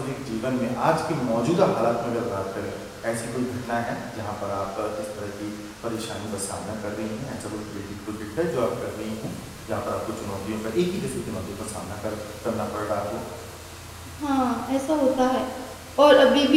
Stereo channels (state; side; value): identical; both; correlation 1.00